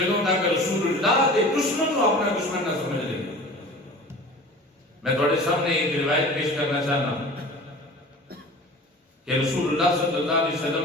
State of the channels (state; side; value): normal; both; correlation 0.40